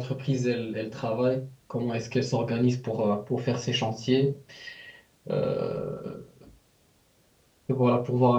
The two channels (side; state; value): both; identical; correlation 1.00